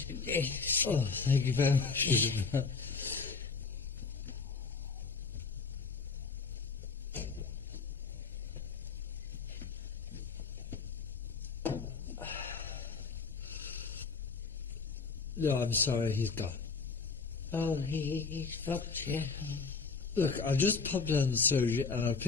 Oh, thank you very much. No, I'm sorry, he's gone. Oh, he's fucked, yeah. Look, I'll just pop down to the surgery and I'll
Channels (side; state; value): right; quieter; 4.8 dB